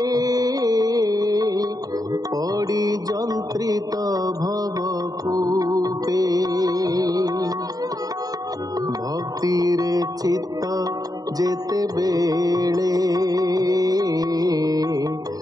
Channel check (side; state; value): left; late; 0.18 ms